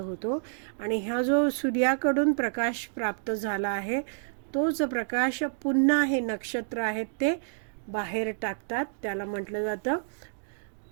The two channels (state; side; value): silent; left; digital silence